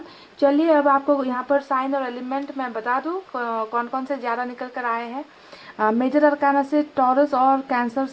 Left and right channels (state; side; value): identical; both; correlation 1.00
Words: चलिए अब आपको यहाँ पर साइन और एलिमेंट मैं बता दूँ कौन कौन से ज़्यादा निकल कर आए हैं। मेजर अरकाना से टॉरस और कैंसर